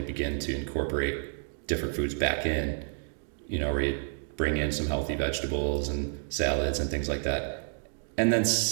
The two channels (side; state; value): left; silent; digital silence